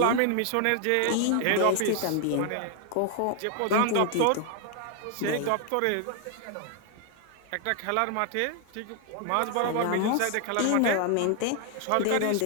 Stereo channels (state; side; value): different; both; correlation 0.00